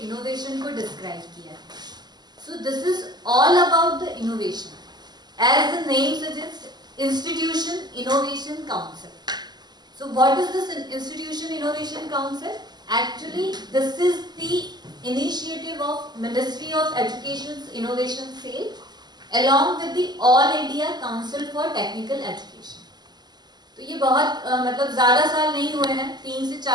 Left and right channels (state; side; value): late; left; 0.20 ms